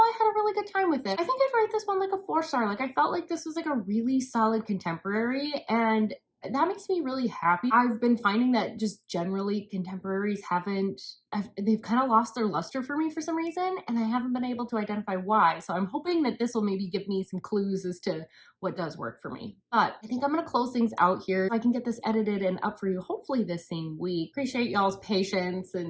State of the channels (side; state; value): both; identical; correlation 1.00